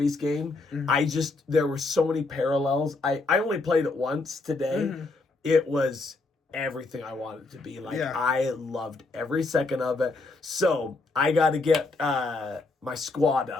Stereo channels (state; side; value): quieter; right; 3.5 dB